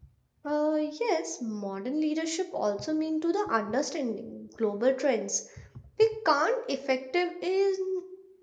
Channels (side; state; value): both; identical; correlation 1.00